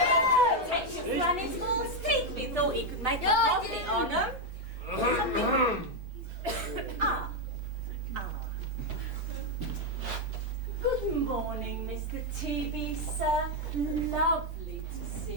Take your granny's false teeth. We thought he could make a profit on them. Ah. Good morning, Mr. TB, sir. Lovely to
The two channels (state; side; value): noise; left; rumble, 25 dB below the sound